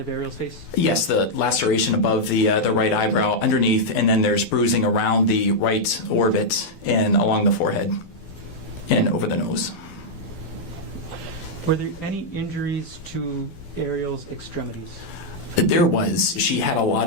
Ariel's face? Yes, the laceration above the right eyebrow underneath, and then there's bruising around the right orbit and along the forehead and over the nose. Were there any injuries to Ariel's extremities? There was. She had a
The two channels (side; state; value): right; late; 12 ms